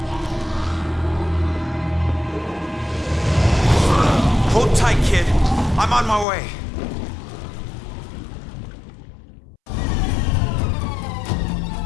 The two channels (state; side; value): drops out; right; at 6.2 s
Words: Hold tight, kid. I'm on my way.